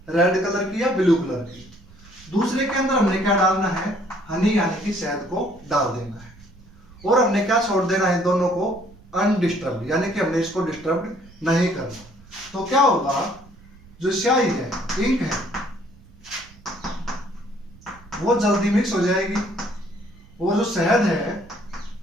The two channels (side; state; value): right; noise; rumble, 23 dB below the sound